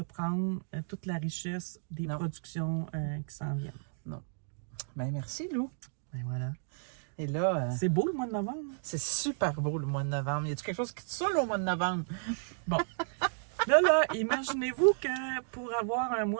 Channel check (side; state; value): left; silent; digital silence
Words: prendre toute la richesse des productions qui s'en viennent. Non. Bien, merci, Lou. Ben voilà. Et là... c'est beau le mois de novembre. C'est super beau le mois de novembre. Y a-t-il quelque chose qui te saoule au mois de novembre? Bon. Là, imaginez-vous que pour avoir un